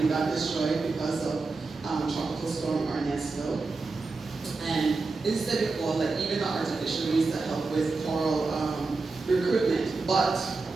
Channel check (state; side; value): quieter; left; 3.9 dB